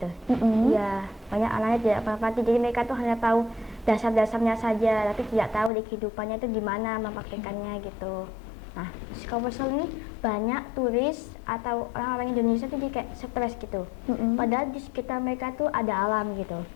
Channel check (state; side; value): drops out; right; at 5.7 s